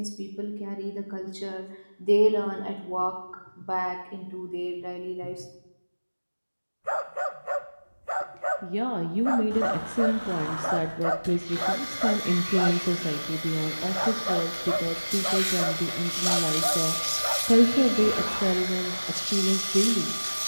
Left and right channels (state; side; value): inverted; both; correlation -1.00